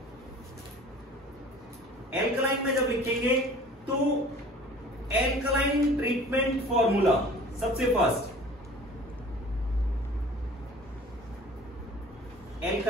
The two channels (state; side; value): normal; both; correlation 0.46